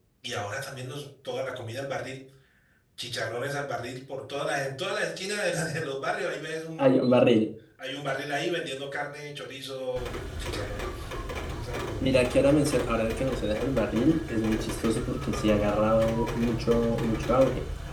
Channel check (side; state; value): both; identical; correlation 1.00